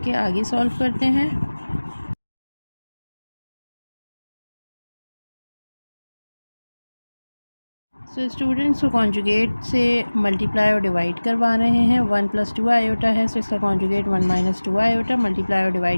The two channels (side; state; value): both; inverted; correlation -1.00